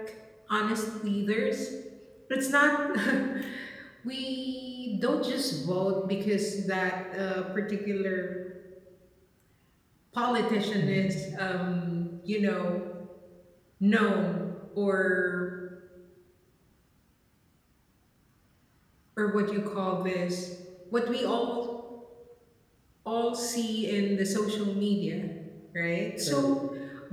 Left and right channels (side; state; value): both; identical; correlation 1.00